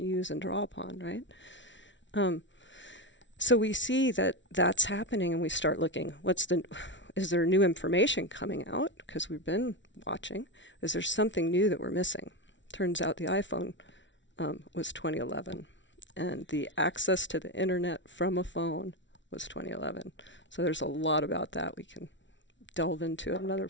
use and draw upon, right? So we see that that's happening, and we start looking, is there new information coming out? Because we've been watching. Is there something new that we're missing? Turns out the iPhone was 2011, and the access to the internet from a phone was 2011. So there's a lot about that we can delve into at another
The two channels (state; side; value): late; right; 0.54 ms